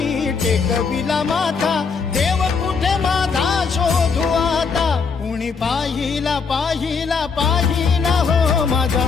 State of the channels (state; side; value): quieter; right; 5.3 dB